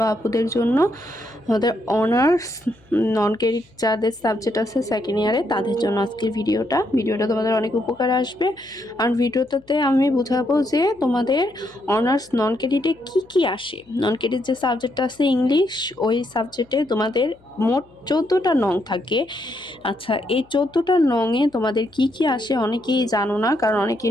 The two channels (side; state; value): left; noise; hum, 30 dB below the sound